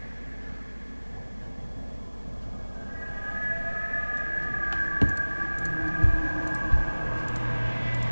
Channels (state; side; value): inverted; both; correlation -1.00